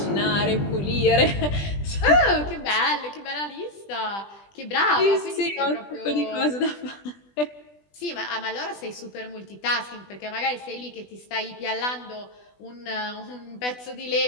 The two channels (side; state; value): right; late; 20 ms